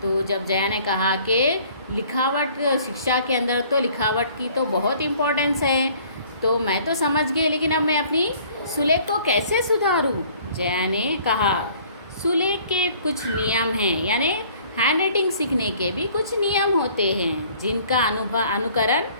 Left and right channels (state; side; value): inverted; both; correlation -0.55